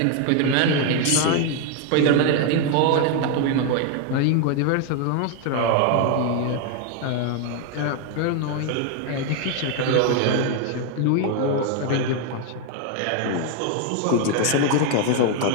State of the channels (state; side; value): different; both; correlation 0.01